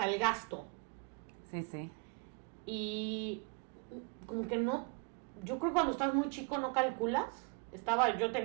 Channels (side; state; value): left; quieter; 34.0 dB